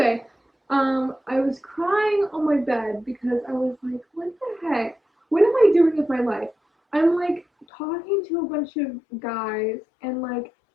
I was crying on my bed because I was like, what the heck? What am I doing with my life? I'm like talking to a bunch of guys, and like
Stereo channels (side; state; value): right; drops out; at 7.7 s